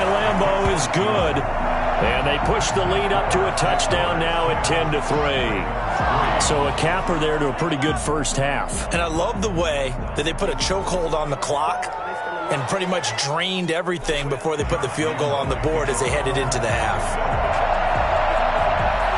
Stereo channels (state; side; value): identical; both; correlation 1.00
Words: Lambeau is good. And they push the lead up to a touchdown now at 10-3. So a capper there to a pretty good first half. And I love the way that they put a chokehold on the clock and pretty much drained everything before they put the field goal on the board as they headed into the half.